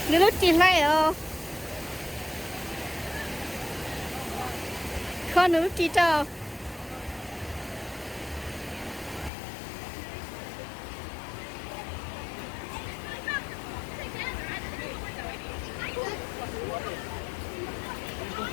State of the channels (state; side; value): drops out; right; at 9.3 s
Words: như lúc chị này con lúc chị cho